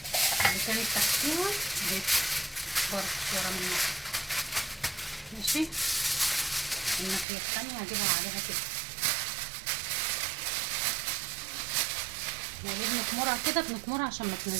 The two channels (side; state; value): left; drops out; at 7.2 s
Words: اللي كانت تحتيها دي برضه ورا منها. ماشي. الناحيه الثانيه هجيبها عليها كده. وليه بنكمرها كده؟ بنكمرها عشان ما